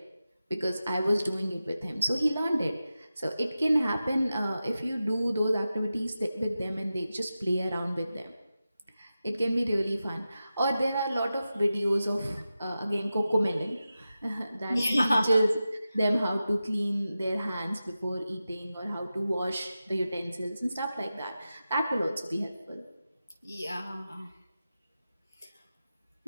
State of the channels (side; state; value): both; inverted; correlation -0.93